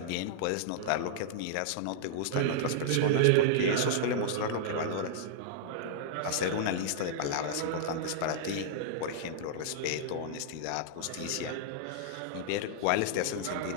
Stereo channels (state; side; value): different; both; correlation -0.01